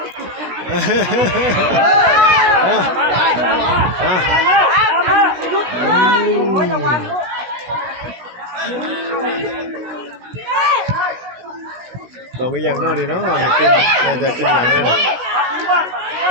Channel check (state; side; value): late; left; 16 ms